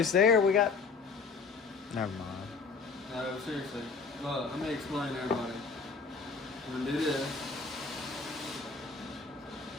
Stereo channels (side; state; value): right; quieter; 4.7 dB